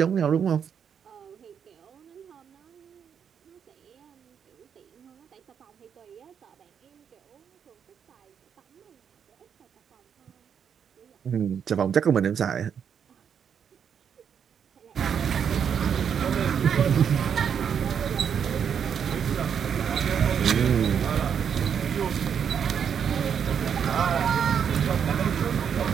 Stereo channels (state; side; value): quieter; left; 7.7 dB